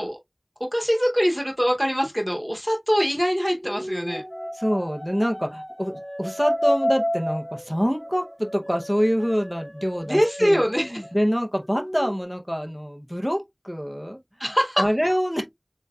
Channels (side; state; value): both; identical; correlation 1.00